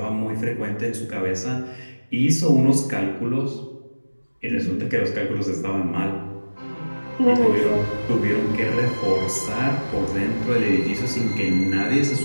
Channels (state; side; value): inverted; both; correlation -1.00